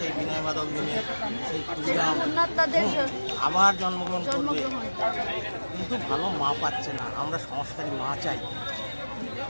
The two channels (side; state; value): both; inverted; correlation -1.00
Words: বিনয় বাদল দীনেশ, সেই ক্ষুদিরাম আবার জন্মগ্রহণ করবে, কিন্তু ভালো মা পাচ্ছে না। আমরা সংস্কারী মা চাই।